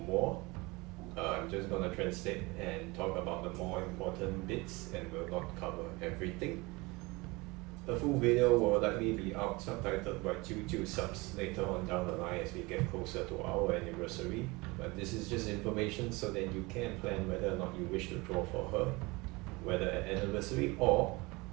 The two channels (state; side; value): quieter; left; 24.3 dB